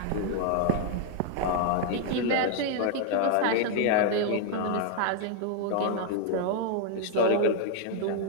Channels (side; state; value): both; different; correlation 0.00